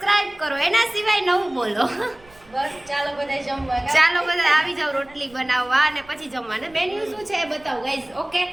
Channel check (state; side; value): noise; right; rumble, 27 dB below the sound